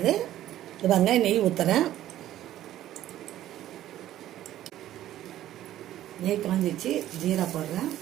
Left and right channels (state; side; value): quieter; left; 13.1 dB